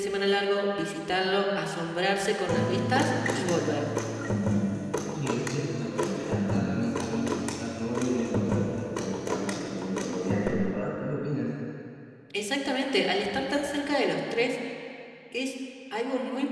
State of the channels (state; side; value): identical; both; correlation 1.00